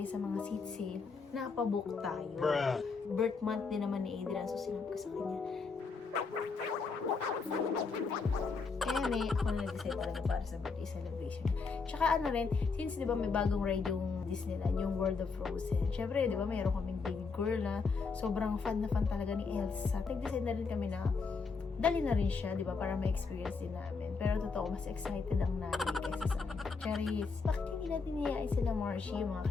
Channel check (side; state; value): right; quieter; 4.7 dB